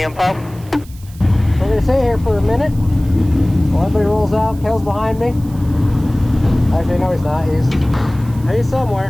info. We're gonna stay here for a minute while everybody rolls out. Kel's behind me. Actually, no, he's not. He's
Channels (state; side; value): noise; right; hiss, 24 dB below the sound